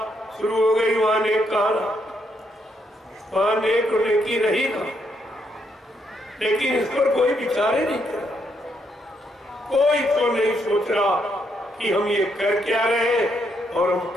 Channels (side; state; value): both; normal; correlation 0.76